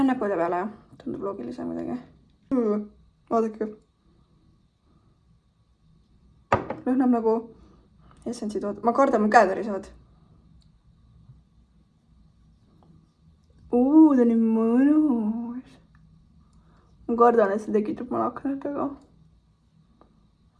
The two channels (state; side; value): identical; both; correlation 1.00